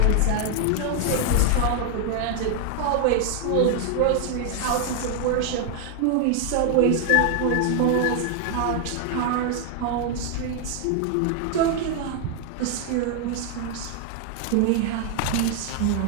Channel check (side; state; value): both; different; correlation 0.00